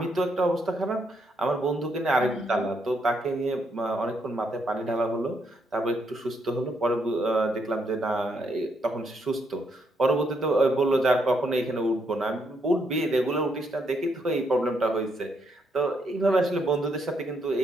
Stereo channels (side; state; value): both; normal; correlation 0.75